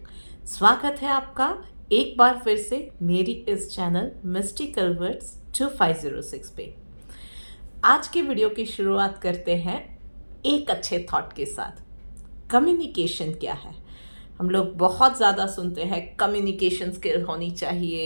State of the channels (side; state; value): both; inverted; correlation -1.00